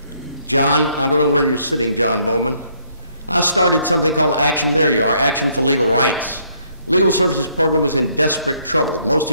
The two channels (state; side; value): inverted; both; correlation -0.68